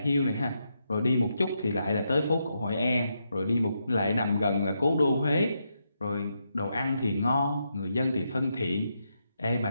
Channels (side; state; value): both; inverted; correlation -0.82